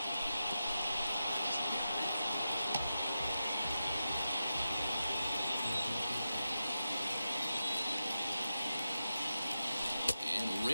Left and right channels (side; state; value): both; inverted; correlation -0.90